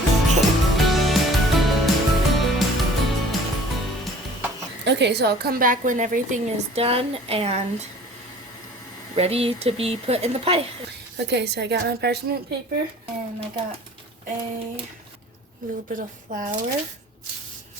Okay, so I'll come back when everything is done and ready to be put in the pie. Okay, so I got my parchment paper and I got a little bit of flour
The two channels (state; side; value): normal; both; correlation 0.48